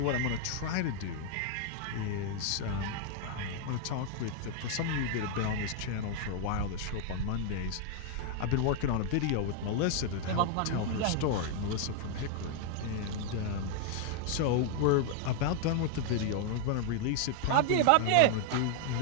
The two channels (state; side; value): different; both; correlation 0.00